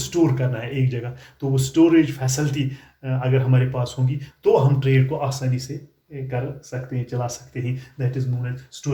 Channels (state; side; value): identical; both; correlation 1.00